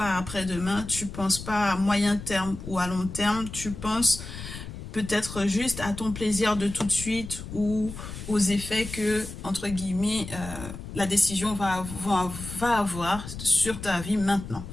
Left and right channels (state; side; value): noise; left; rumble, 10 dB below the sound